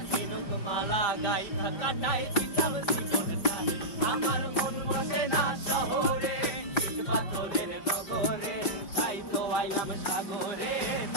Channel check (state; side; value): late; right; 5.6 ms